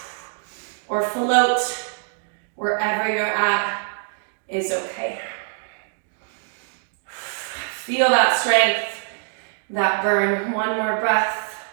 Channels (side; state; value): left; silent; digital silence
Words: or float. Wherever you're at is okay. Feel that strength, that burn. One more breath.